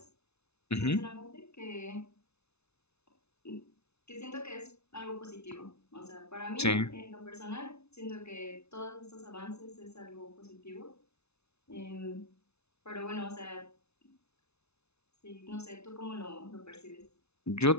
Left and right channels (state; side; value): late; right; 0.81 ms